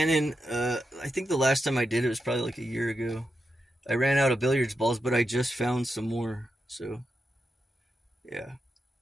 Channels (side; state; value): both; normal; correlation 0.87